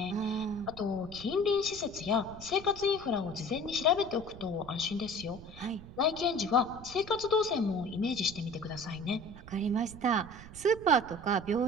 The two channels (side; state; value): right; noise; rumble, 16 dB below the sound